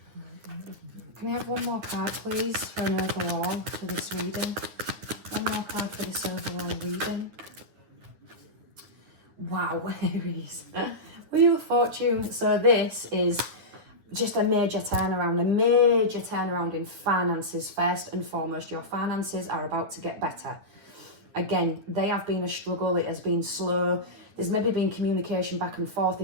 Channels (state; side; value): late; left; 9.7 ms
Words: Can I have one more card, please, for an overall for this reading? One more card for this overall reading. Wow, Aries. Wheel of Fortune. So this is just a major turnaround in finances. First and foremost, your finances are about to get better. Again, they have been a struggle. It has been slow. There's maybe been communication back and forth